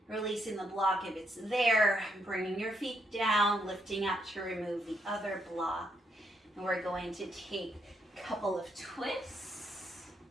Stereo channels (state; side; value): normal; both; correlation 0.77